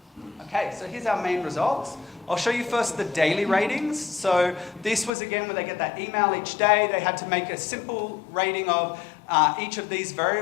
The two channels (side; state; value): right; drops out; at 5.1 s